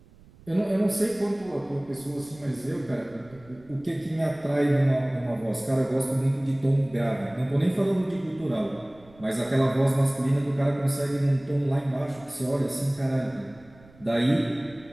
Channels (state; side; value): noise; right; rumble, 25 dB below the sound